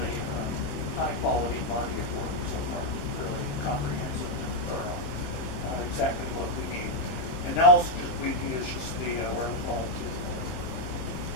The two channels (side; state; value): right; late; 24 ms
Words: high-quality body of work so far, really comprehensive and thorough, exactly what we need. And now we need is just the wherewithal to.